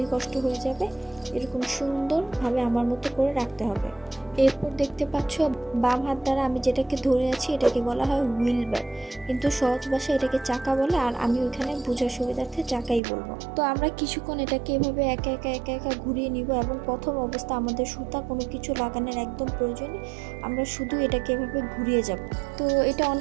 কষ্ট হয়ে যাবে। এরকম সুন্দরভাবে আমার মতো করে রাখতে হবে। এরপর দেখতে পাচ্ছ বাম হাত দ্বারা আমি যেটাকে ধরে আছি এটাকে বলা হয় হুইল বার, কিন্তু সহজ ভাষায় এটাকে চাকা বলে, আর আমি ওইখানে বোঝার সুবিধার্থে চাকাই বলবো। তো আমরা কিছুক্ষণ এটাকে এভাবে একা একা ঘুরিয়ে নিব এবং প্রথম অবস্থা আমাদের সুতা কোনো কিছু লাগানোর একদম প্রয়োজন নেই, আমরা শুধু এটাকে এভাবে ঘুরিয়ে যাব। তো এটা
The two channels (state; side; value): drops out; left; at 13.0 s